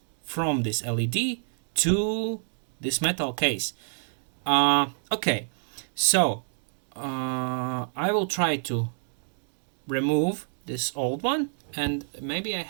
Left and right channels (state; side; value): silent; left; digital silence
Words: from this LED to this metal case. Okay, so I will try to remove this old one, and maybe I